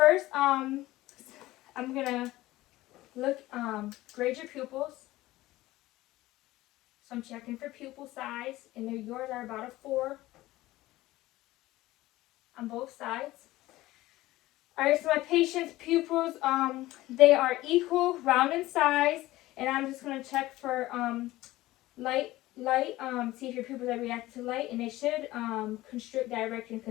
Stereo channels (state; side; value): quieter; right; 17.3 dB